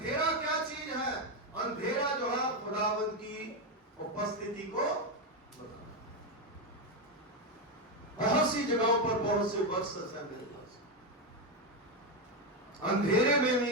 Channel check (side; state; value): both; normal; correlation 0.08